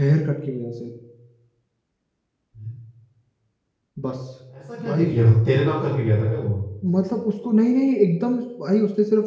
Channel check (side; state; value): both; identical; correlation 1.00